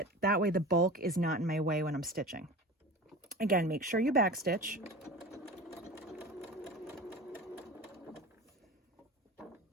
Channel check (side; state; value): both; normal; correlation 0.33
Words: That way the bulk is not in my way when I'm stitching. Again, make sure you back stitch.